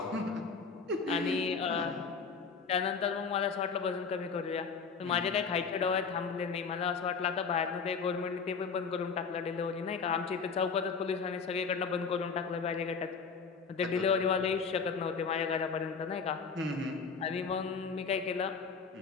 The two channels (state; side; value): quieter; right; 5.4 dB